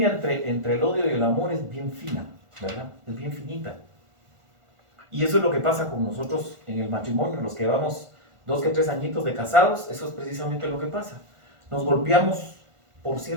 entre el odio y el amor es bien fina, ¿verdad? Es bien finita. Y eso es lo que pasa con nosotros en el matrimonio, los que llevamos 2 que 3 añitos de casados, eso es precisamente lo que pasa. Nos golpeamos por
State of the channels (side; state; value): left; late; 1.5 ms